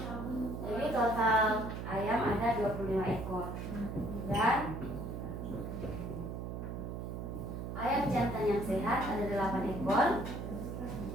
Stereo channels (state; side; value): noise; right; hum, 6 dB below the sound